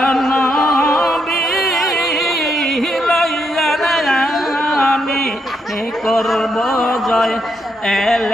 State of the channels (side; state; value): both; normal; correlation 0.78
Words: নবী করব জয়,